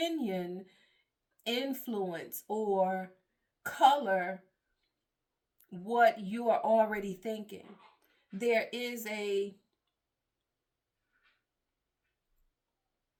influence or color what you are already thinking. There is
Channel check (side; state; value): both; identical; correlation 1.00